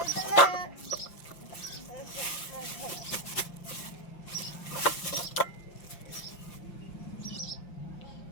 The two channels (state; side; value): late; right; 5.8 ms